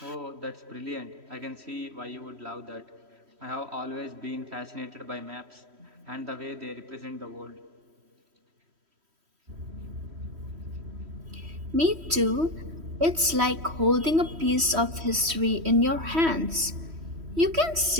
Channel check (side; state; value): left; late; 3.1 ms